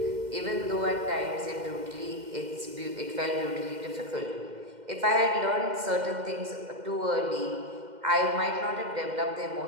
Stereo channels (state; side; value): late; left; 2.1 ms